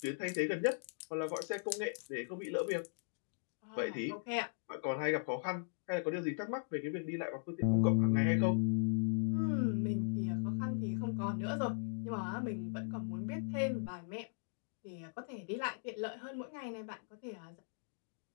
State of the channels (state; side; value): silent; right; digital silence